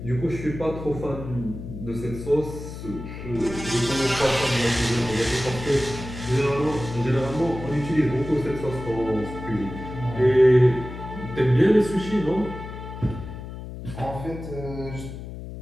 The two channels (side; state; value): left; noise; hum, 10 dB below the sound